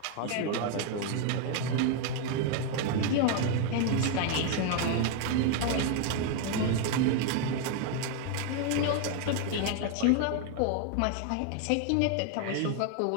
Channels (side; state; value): both; different; correlation 0.01